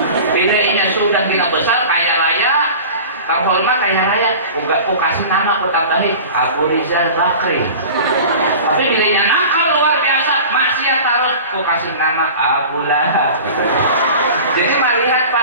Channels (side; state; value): both; inverted; correlation -0.37